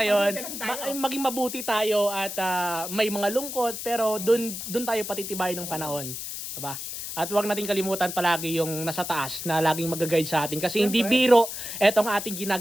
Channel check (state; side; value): noise; left; hiss, 7 dB below the sound